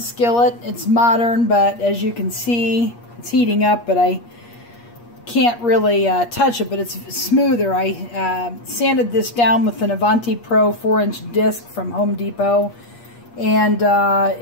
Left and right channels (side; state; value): right; late; 8.4 ms